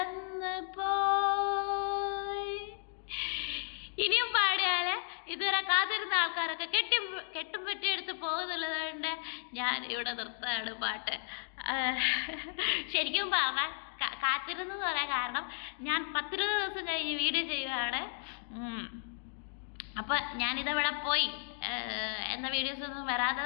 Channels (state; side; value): silent; right; digital silence